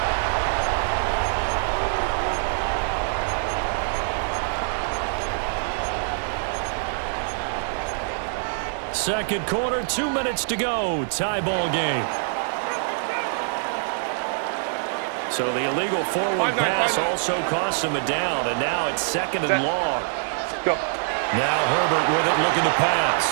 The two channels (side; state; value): left; silent; digital silence